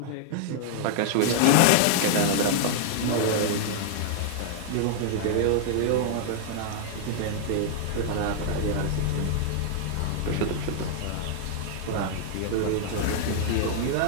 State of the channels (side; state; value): both; different; correlation -0.01